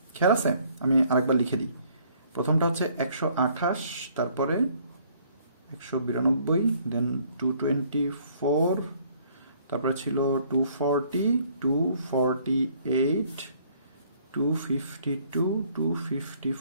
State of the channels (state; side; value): inverted; both; correlation -0.62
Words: খেয়াল আছে? আমি আরেকবার লিখে দিই। প্রথমটা হচ্ছে 128, তারপরে 192, দেন 224, তারপরে ছিল 240, 248, 252,